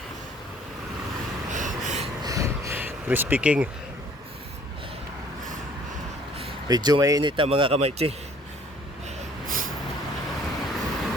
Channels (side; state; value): both; normal; correlation 0.56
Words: Crispy King. Medyo mainit na mga kamaychi.